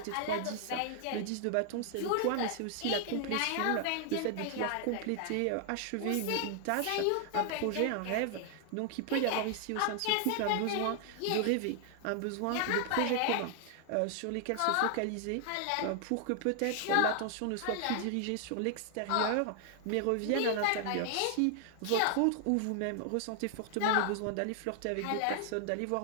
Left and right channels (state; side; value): different; both; correlation 0.00